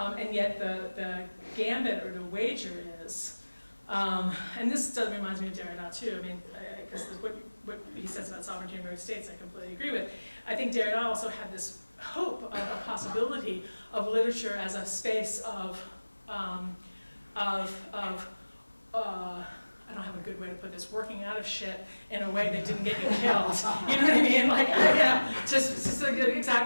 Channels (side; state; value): both; inverted; correlation -1.00